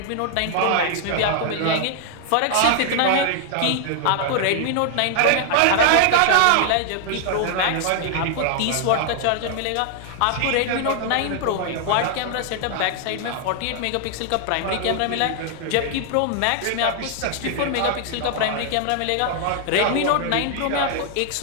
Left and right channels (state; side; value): different; both; correlation 0.00